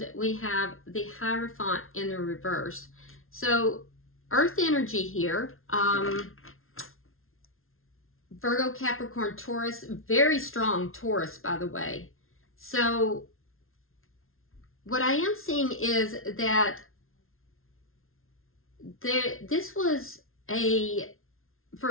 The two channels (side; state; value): right; late; 0.61 ms